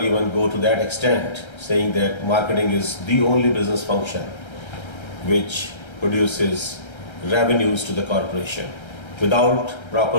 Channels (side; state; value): right; late; 1.3 ms